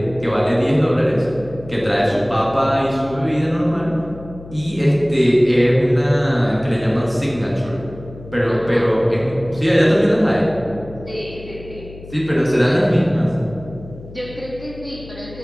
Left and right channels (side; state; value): left; noise; hum, 17 dB below the sound